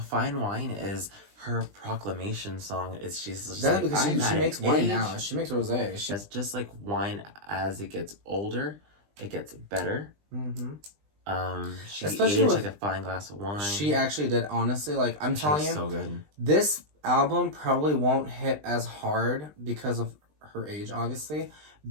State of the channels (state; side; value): late; left; 20 ms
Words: Wine is her proclamation song. She's just That's like, because she I'm makes at wine age. now. She makes rosé. It's just like wine as it gets older, it gets better. She Especially aged with- like a fine glass of wine. She actually did. Honestly, like I'm She telling was you, so good. this album probably won't hit as hard because of her age, obviously.